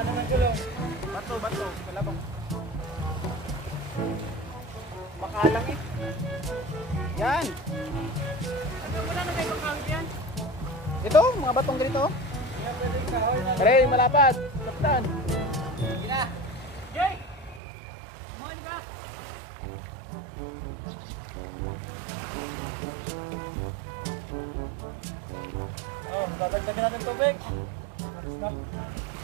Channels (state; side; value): drops out; left; at 17.6 s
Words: ng gulong. Bato. Kalabang. Makalang eh. Yan. Ano wala na kayo pagkawit yan? Ito, mga batong ganito. Kaya pwedeng kahoy na. Pare, malapad. Kapitan. Gina. Jay! Kumain ka! Oh, dadagdagan natin tubig. Stop.